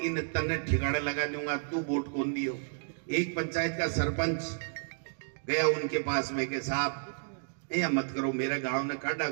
इन तन्ने ठिकाने लगा दूंगा, तू वोट कौन दियो। एक पंचायत का सरपंच गया उनके पास में के साहब ये मत करो, मेरे गांव ने काटा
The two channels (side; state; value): left; silent; digital silence